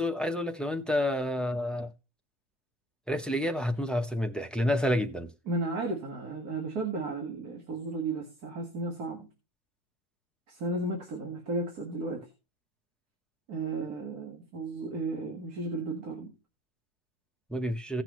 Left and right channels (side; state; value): both; normal; correlation 0.53